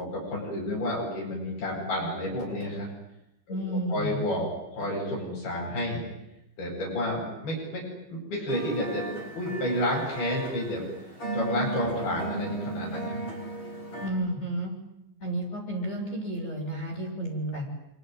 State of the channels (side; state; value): right; late; 15 ms